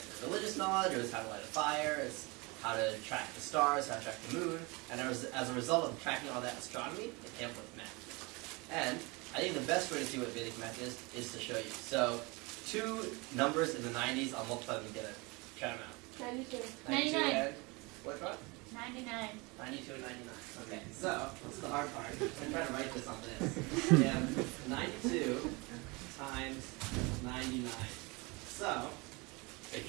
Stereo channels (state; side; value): quieter; left; 26.6 dB